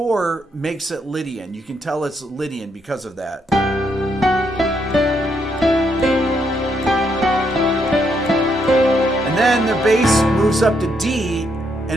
makes it Lydian. You can tell it's Lydian because of that. And then the bass moves up to D,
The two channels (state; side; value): normal; both; correlation 0.76